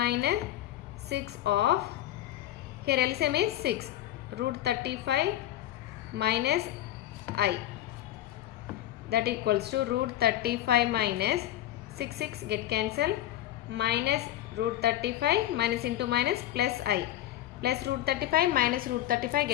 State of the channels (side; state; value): right; quieter; 13.5 dB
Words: 6 of, here LCM is 6, root 35 minus I, that equals to root 35 minus 6 get cancelled, minus root 35 minus into minus plus I, plus root 35 minus root 35